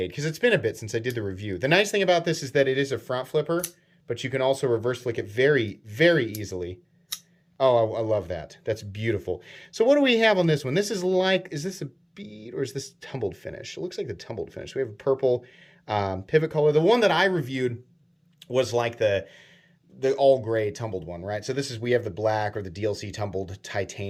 because it's been a bit since I did the review. The nice thing about this is that it is a front flipper, but you can also reverse flick it very, very easily. Oh, I love that. That's beautiful. So what do we have on this one? This is like, is this a bead or is this tumbled finish? It looks like the tumbled finish. We have a purple pivot color. The one that I reviewed was like the all gray tumbled one, right? So this is, we have the black or the DLC tumbled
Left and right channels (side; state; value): both; identical; correlation 1.00